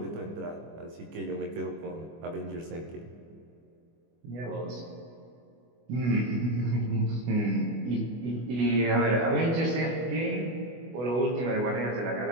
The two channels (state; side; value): late; left; 24 ms